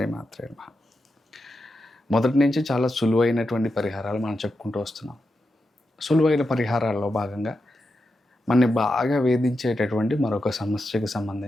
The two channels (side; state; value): both; normal; correlation 0.88